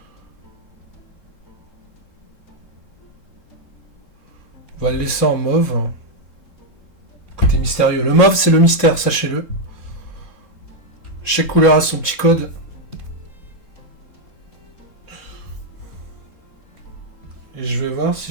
On va le laisser en mauve. Côté mystérieux. Le mauve, c'est le mystère, sachez-le. Chaque couleur a son petit code. Et je vais voir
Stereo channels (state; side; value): late; right; 3.7 ms